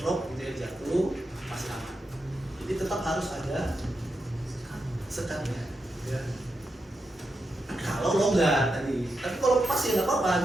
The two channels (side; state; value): both; normal; correlation 0.86